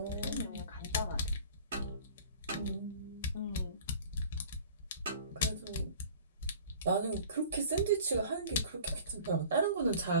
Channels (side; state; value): both; inverted; correlation -0.45